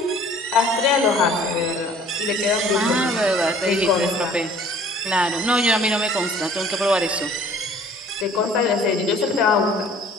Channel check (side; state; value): both; normal; correlation 0.52